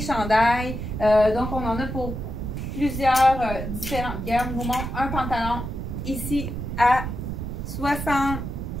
Donc, on en a pour plusieurs différentes gammes. Je vous montre un pantalon ici à 60%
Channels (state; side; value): noise; right; rumble, 5 dB below the sound